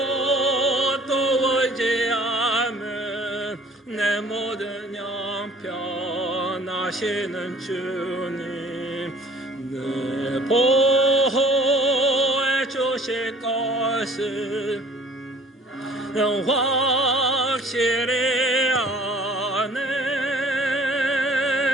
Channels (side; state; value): both; normal; correlation 0.53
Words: 또 의지함은 내 모든 형편하시는 주님 늘 보호해 주실 것을 확실히 아네.